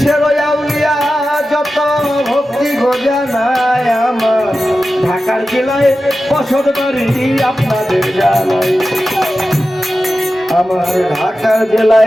আউলিয়া যত ভক্তি গোজা নাই আমার ঢাকার জেলায় বসত বাড়ি আপনাদের জানাই আমার ঢাকার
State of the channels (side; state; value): both; normal; correlation 0.93